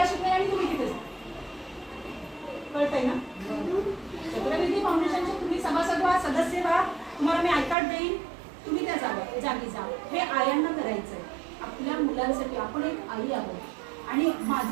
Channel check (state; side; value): drops out; left; at 7.8 s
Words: शिकवेन आणि तुम्ही तिथे कळतंय ना. चक्रविधी फाउंडेशनचे तुम्ही सभासद व्हा, सदस्य व्हा. तुम्हाला मी आय कार्ड देईन, तुम्ही त्या जागी जा. हे आयांना करायचंय आपल्या मुलांसाठी. आपण एक आई आहोत. आणि